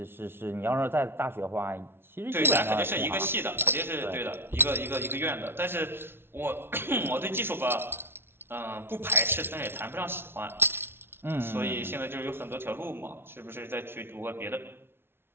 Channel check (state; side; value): late; left; 0.11 ms